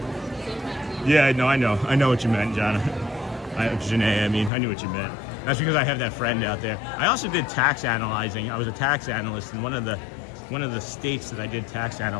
Yeah, I know what you meant, John. Janae, I mean, I knew what you meant. That's because I have that friend out there. I also did tax analyzing. I was a tax analyst, and one of the states that I did tax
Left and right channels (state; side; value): drops out; right; at 4.5 s